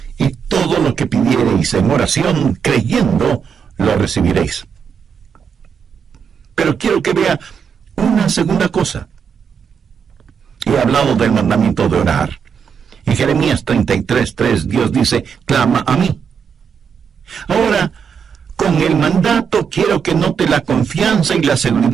y todo lo que pidiereis en oración, creyendo, lo recibiréis. Pero quiero que vea una segunda cosa. He hablado del mandamiento de orar. En Jeremías 33:3, Dios dice, clama a mí. Ahora, con el mandato quiero que note la confianza y la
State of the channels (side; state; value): left; quieter; 6.8 dB